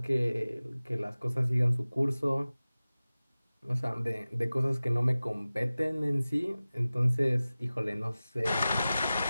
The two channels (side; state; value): both; inverted; correlation -0.97